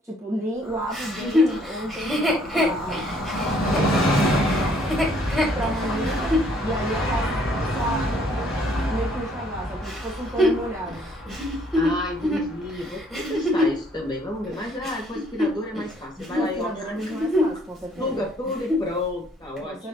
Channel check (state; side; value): normal; both; correlation 0.63